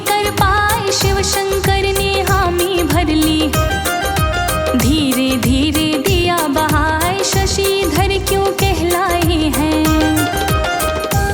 कर पाए, शिव शंकर ने हामी भर ली। धीरे धीरे दिया बहाए, शशिधर क्यों कहलाए हैं।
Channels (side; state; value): both; identical; correlation 1.00